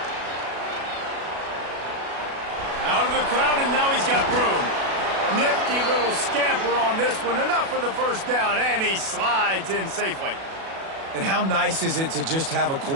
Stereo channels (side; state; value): left; late; 37 ms